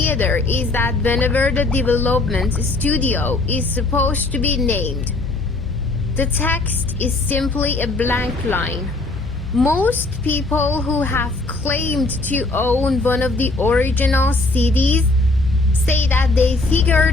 is that whenever the development studio is supposed to be named, the text is simply a blank line. Most people who have claimed to own one of the original CDs say that they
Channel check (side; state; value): right; quieter; 3.1 dB